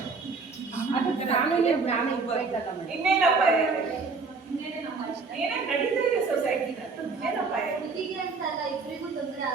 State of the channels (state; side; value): quieter; left; 4.4 dB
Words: ಅದು ಕಾನೂನಿನ ಜ್ಞಾನ ಇರ್ಬೇಕಲ್ಲ ಮೇಡಮ್. ಇನ್ನೇನು ಅಪಾಯ ಇದೆ? ಏನೇನು ನಡೀತಾ ಇದೆ ಸೊಸೈಟಿನಲ್ಲಿ? ಇನ್ನೇನು ಅಪಾಯ ಇದೆ? ಇಬ್ಬರಿಗೂ ತೊಂದರೆ